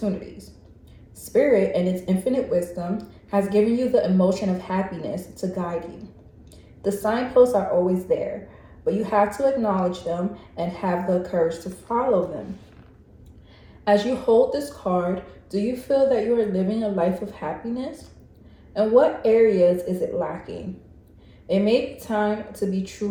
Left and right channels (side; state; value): both; identical; correlation 1.00